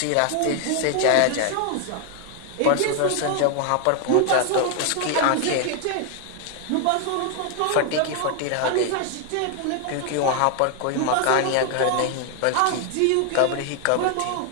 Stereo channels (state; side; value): different; both; correlation 0.00